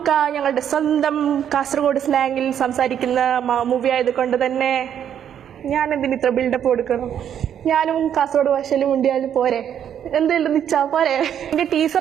ഞങ്ങളുടെ സ്വന്തം കാസർഗോഡ് സ്ലാങ്ങിൽ സംസാരിക്കുന്ന മൂവി ആയതുകൊണ്ട് തന്നെ ഞാൻ എന്തിന് ഇത്ര ബിൽഡപ്പ് കൊടുക്കണം? ഞാനും കാസർഗോഡ് ഭാഷയിൽ മുണ്ടിയാലും പോരെ, എന്തെങ്കിലും നിച്ചാ പോരെ. എന്റെ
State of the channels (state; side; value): quieter; left; 9.3 dB